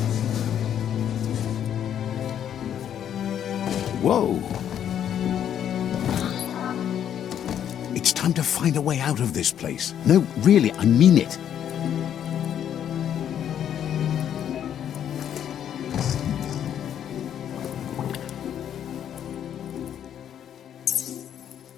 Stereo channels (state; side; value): quieter; right; 9.7 dB